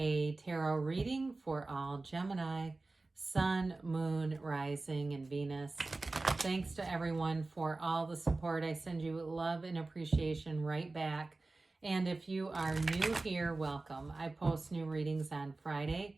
tarot reading for all Gemini, Sun, Moon, Rising, and Venus. Thanks to everyone for all the support. I send you love and appreciation right back. And if you are new here, welcome. I post new readings on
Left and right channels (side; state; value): left; quieter; 3.3 dB